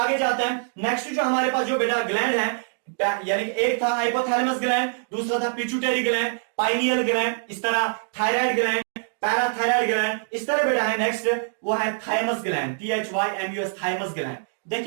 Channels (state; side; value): silent; left; digital silence